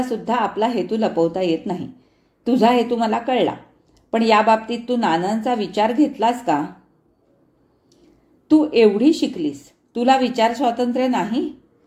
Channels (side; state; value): both; identical; correlation 1.00